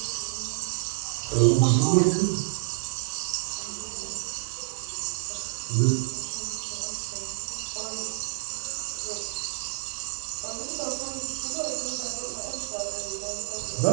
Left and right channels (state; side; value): silent; left; 59 dB below the other